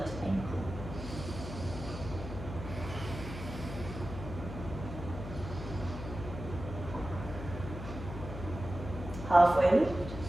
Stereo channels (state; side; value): noise; left; hum, 9 dB below the sound